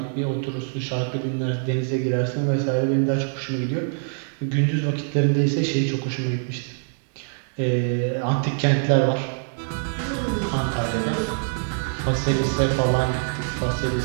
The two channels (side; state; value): left; silent; digital silence